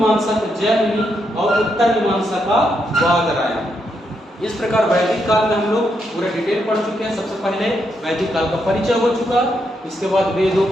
का जैमिनी और उत्तर मीमांसा का वादरायण। इस प्रकार वैदिक काल में हम लोग पूरा डिटेल पढ़ चुके हैं। सबसे पहले वैदिक काल का परिचय हो चुका, इसके बाद वेदों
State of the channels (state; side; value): normal; both; correlation 0.80